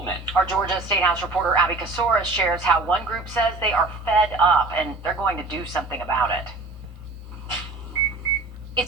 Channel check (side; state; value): left; quieter; 3.3 dB